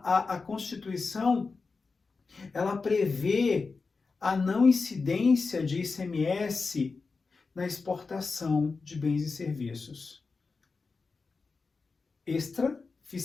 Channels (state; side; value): quieter; right; 4.4 dB